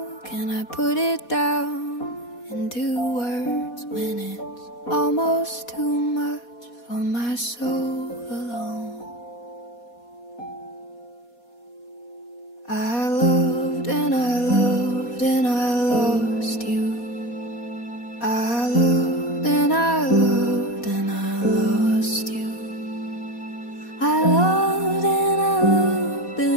can I put it down into words when it's almost too much for my soul alone? I loved and I loved and I lost you. I loved and I loved and I lost you. I loved and I loved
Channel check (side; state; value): right; late; 4.2 ms